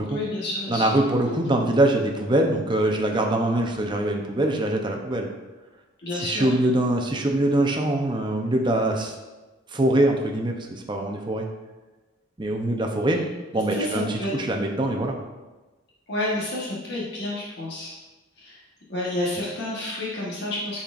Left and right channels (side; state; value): both; normal; correlation 0.59